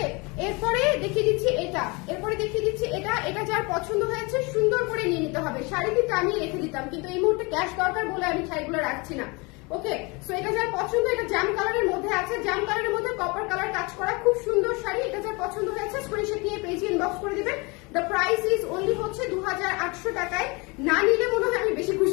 এরপরে দেখিয়ে দিচ্ছি এটা, এরপরে দেখিয়ে দিচ্ছি এটা। এটা যার পছন্দ হয়েছে সুন্দর করে নিয়ে নিতে হবে। শাড়িটি টানিয়ে রেখে দিতাম কিন্তু এই মুহূর্তে ক্যাশ দরকার বলে আমি শাড়িগুলো রাখছি না। ওকে, সো এটা যার পছন্দ, এটা জাম কালারের মধ্যে আছে, জাম কালারের মধ্যে কপার কালার কাজ করা, খুব সুন্দর শাড়ি। এটা যার পছন্দ হয়েছে স্ক্রিনশট নিয়ে পেজে ইনবক্স করে দিবেন। দ্য প্রাইস ইজ অনলি হচ্ছে 2800 টাকায়। না নিলে মনে হয় আমি বেশি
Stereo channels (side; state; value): right; quieter; 27.8 dB